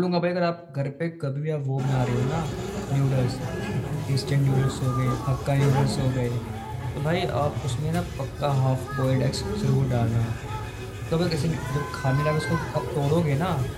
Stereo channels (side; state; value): both; identical; correlation 1.00